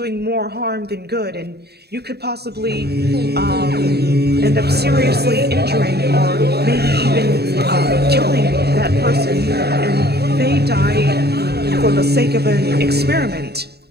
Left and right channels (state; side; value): late; left; 0.47 ms